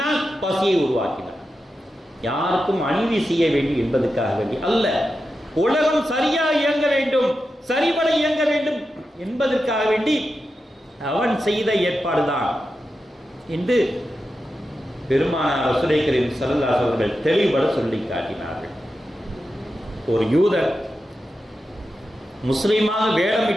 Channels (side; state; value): both; normal; correlation 0.90